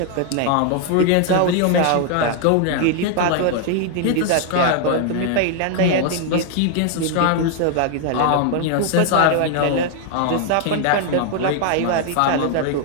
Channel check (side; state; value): both; different; correlation 0.00